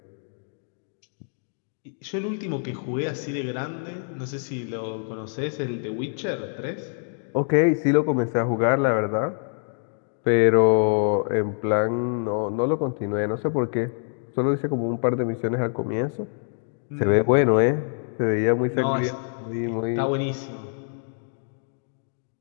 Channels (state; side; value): silent; right; 57 dB below the other